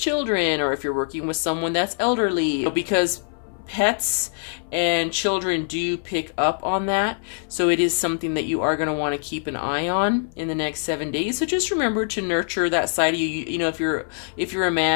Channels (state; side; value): silent; right; 58 dB below the other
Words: or if you're working with someone that's elderly, because pets and children do pick up on that. So it is something that you are going to want to keep an eye on in the next 7 days. So just remember to nurture that side of you. You know, if you're a